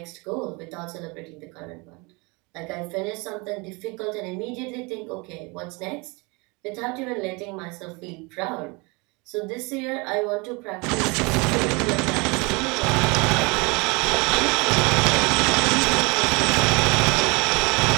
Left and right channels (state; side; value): quieter; left; 28.0 dB